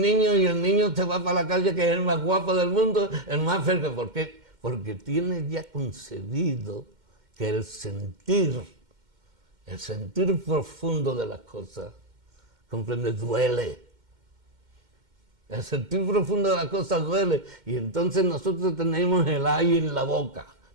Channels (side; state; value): left; late; 2.1 ms